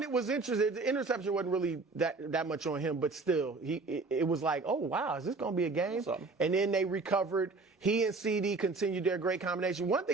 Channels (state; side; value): quieter; left; 3.8 dB